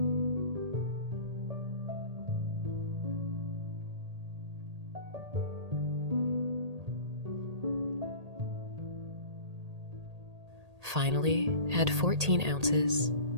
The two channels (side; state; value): left; late; 1.8 ms